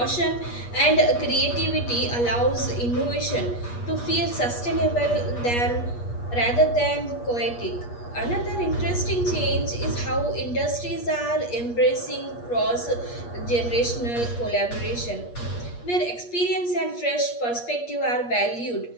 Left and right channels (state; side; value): late; right; 8.4 ms